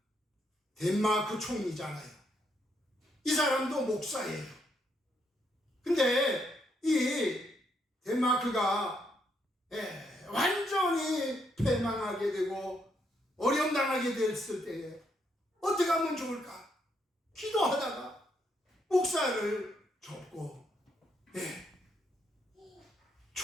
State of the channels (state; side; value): normal; both; correlation 0.76